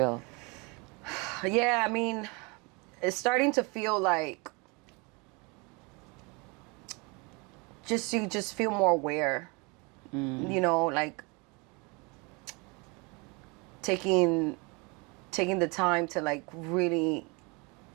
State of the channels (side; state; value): left; quieter; 29.1 dB